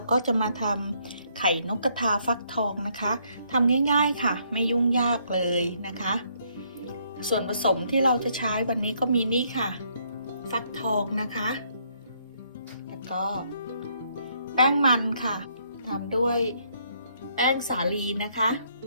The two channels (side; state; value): both; inverted; correlation -0.70